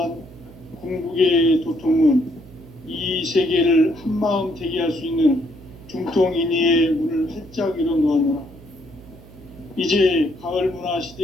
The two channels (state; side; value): noise; right; hum, 20 dB below the sound